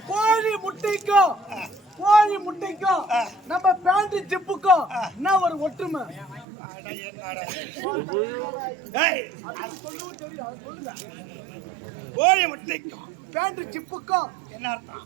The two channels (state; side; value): drops out; left; at 6.5 s